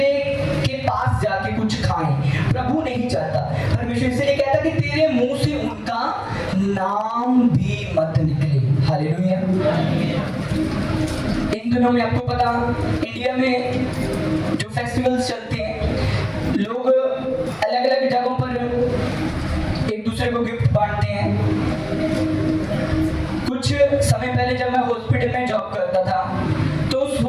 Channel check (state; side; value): identical; both; correlation 1.00